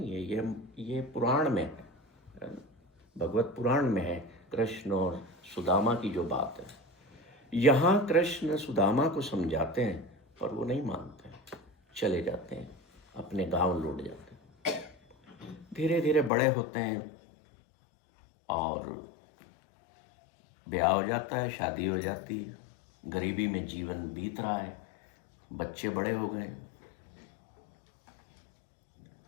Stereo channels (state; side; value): drops out; right; at 16.3 s